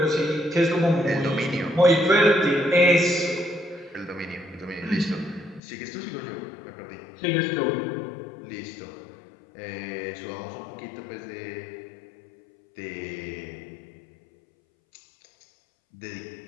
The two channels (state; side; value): drops out; right; at 5.6 s